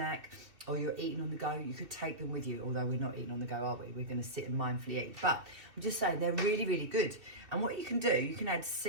or you're eating on the go, you could take them with you, although we're not eating on the go, are we? We're going to sit and mindfully eat. But I'm just saying they're really good. And what you can do, you can add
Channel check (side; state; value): left; late; 2.7 ms